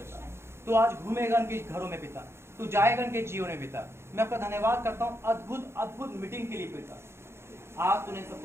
तू आज घूमेगा इनके घरों में पिता, तू जाएगा इनके जीवन में पिता। मैं आपका धन्यवाद करता हूँ अद्भुत अद्भुत मीटिंग के लिए पिता। आज तूने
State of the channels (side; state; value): left; late; 0.12 ms